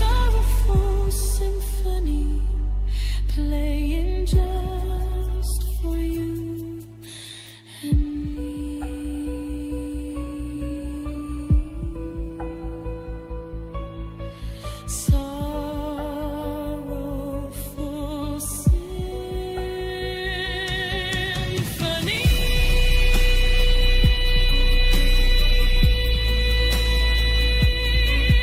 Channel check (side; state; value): both; identical; correlation 1.00